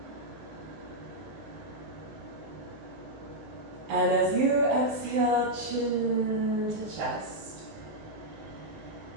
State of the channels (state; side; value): late; left; 19 ms